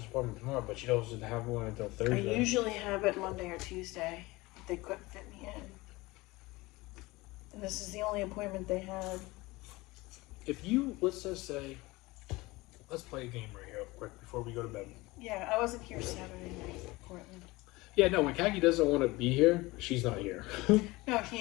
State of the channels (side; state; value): right; quieter; 21.5 dB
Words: appointment tomorrow, but she doesn't have one until I Thursday. usually have it Monday or Tuesday, but they couldn't fit me in. And this is the only appointment they had. If you, let's just say, let's play a game right here quick before we go to bed. Yeah, I wasn't here Saturday night, Portland. Yeah, no, when Kaki doesn't want to be here, she's not here. No,